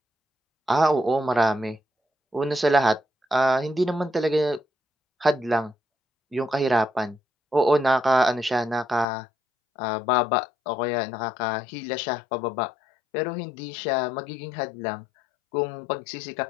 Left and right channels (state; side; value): drops out; right; at 9.1 s